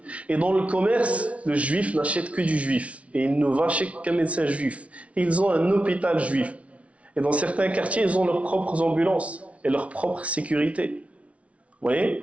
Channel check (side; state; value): left; late; 0.064 ms